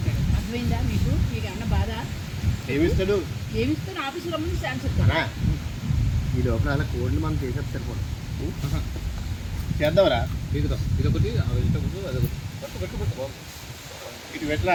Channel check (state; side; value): identical; both; correlation 1.00